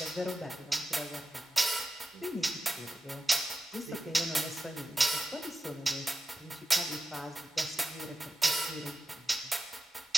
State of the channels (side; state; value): both; normal; correlation 0.91